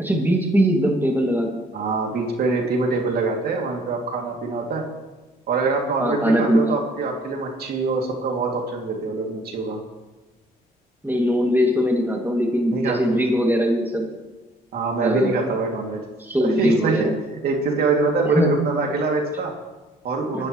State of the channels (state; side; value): normal; both; correlation 0.60